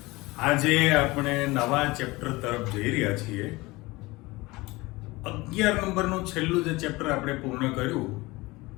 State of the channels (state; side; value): quieter; right; 21.8 dB